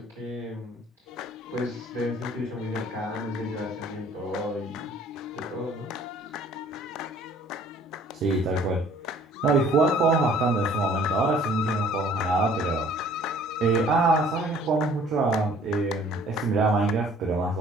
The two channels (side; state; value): both; normal; correlation 0.55